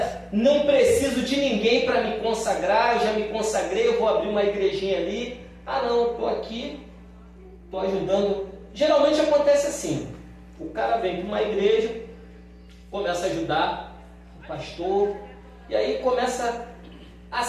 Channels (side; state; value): both; identical; correlation 1.00